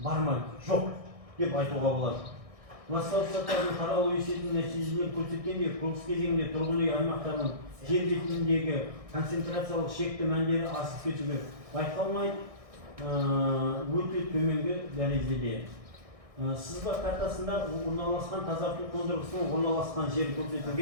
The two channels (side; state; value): left; late; 1.6 ms